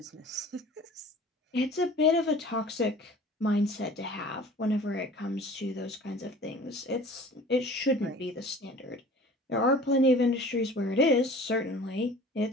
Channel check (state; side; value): normal; both; correlation 0.44